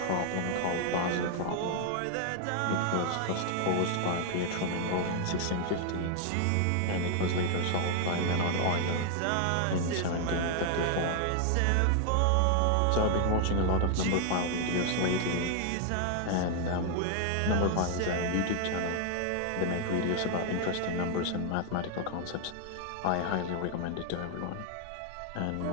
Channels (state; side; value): different; both; correlation 0.00